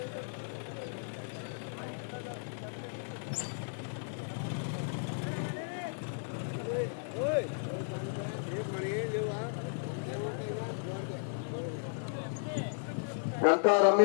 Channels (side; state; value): right; silent; digital silence